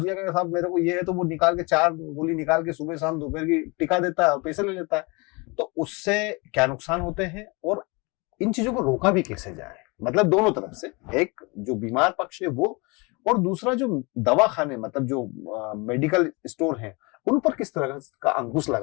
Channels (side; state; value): right; quieter; 28.0 dB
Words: का साहब मेरे को ये है, तो वो निकाल के 4 गोली निकाल के सुबह शाम दोपहर की टिका देता है और पैसे ले लेता है। तो उससे क्या नुकसान होते हैं और इन चीजों को रोका भी कैसे जाए, मतलब दोनों तरफ से, एक जो बीमार पक्ष है वो, और दूसरा जो दवाखाने मतलब जो मेडिकल स्टोर हैं उन पर किस तरह का अंकुश